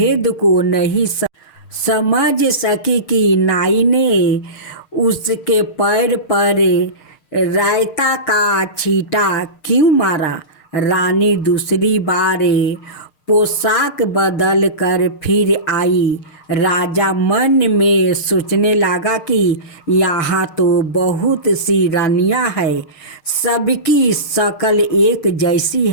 को नहीं समझ सकी कि नाई ने उसके पैर पर रायता का छींटा क्यों मारा। रानी दूसरी बार पोशाक बदल कर फिर आई। राजा मन में सोचने लगा कि यहाँ तो बहुत सी रानियाँ हैं, सबकी शक्ल एक जैसी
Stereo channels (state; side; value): late; right; 6.5 ms